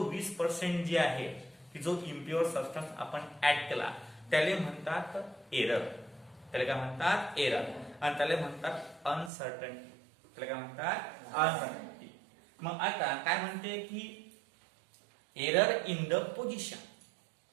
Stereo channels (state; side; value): drops out; left; at 9.3 s